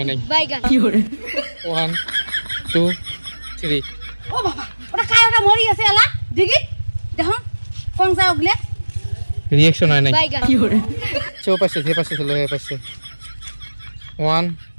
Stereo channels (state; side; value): inverted; both; correlation -1.00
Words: নাই বাইগান 1 2 3 ও বাবা ওটা কায় ওটা মরি আছে এলা দিগি দেখো কোন যা ওগলে রিঅ্যাকশন হয় নাই। বাইগান চো পাশে যে পাশে চলো এই পাশে 1